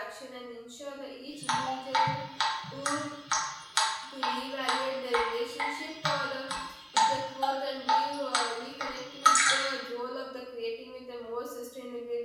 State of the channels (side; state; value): both; identical; correlation 1.00